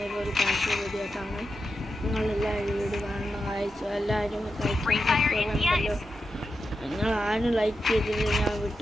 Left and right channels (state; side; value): normal; both; correlation 0.89